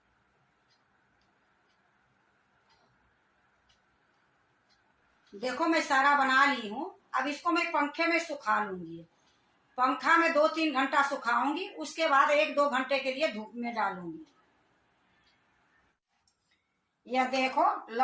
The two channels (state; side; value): identical; both; correlation 1.00